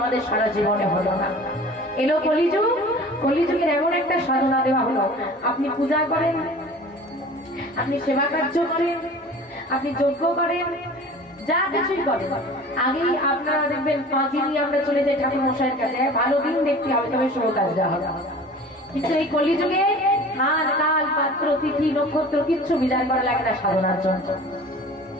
সারা জীবনে হলো না। এলো কলিযুগ, কলিযুগের এমন একটা সাধনা দেওয়া হলো, আপনি পূজা করেন, আপনি সেবা কার্য করেন, আপনি যজ্ঞ করেন, যা কিছুই করেন, আগেই আপনারা দেখবেন 5 দিনই আমরা চলে যাই ঠাকুর মশাইয়ের কাছে, ভালো দিন দেখতে হবে তবে শুভ কাজ দেওয়া হবে। কিন্তু এই কলিযুগে হাত কাল পাত্র তিথি নক্ষত্র কিচ্ছু বিচার করা লাগে না সাধনার জন্য।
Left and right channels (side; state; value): both; normal; correlation 0.42